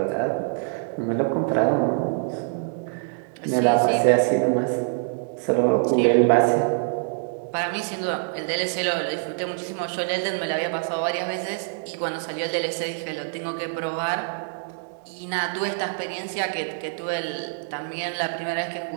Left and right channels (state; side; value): silent; left; 62 dB below the other